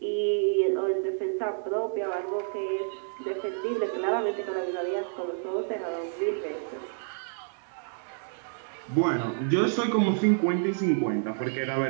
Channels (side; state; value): left; silent; digital silence